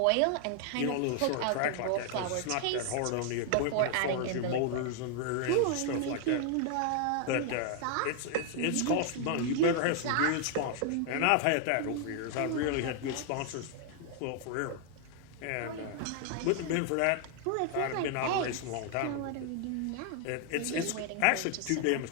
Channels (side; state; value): both; different; correlation 0.00